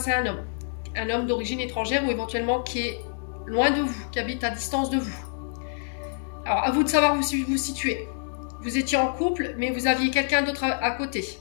à un homme d'origine étrangère ou éventuellement qui est loin de vous, qui habite à distance de vous. Alors, à vous de savoir où vous situer. Vous étiez en couple, mais vous aviez quelqu'un d'autre à côté.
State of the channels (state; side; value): silent; right; digital silence